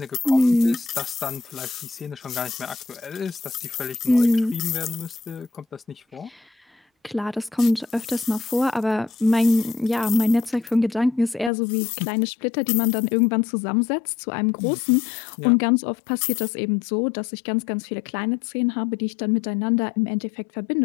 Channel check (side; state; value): right; drops out; at 11.5 s